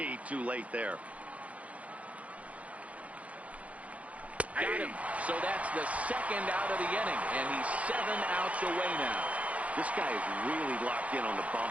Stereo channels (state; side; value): late; left; 0.066 ms